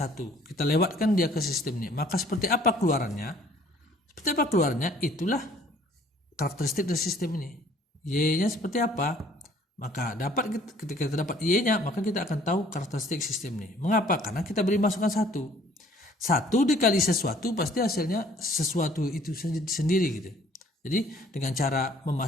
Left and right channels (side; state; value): both; normal; correlation 0.57